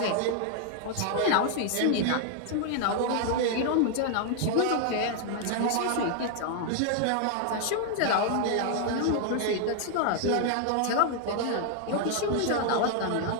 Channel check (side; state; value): both; different; correlation 0.00